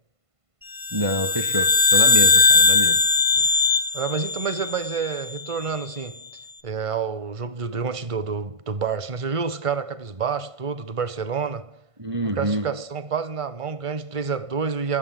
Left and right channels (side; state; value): left; late; 1.5 ms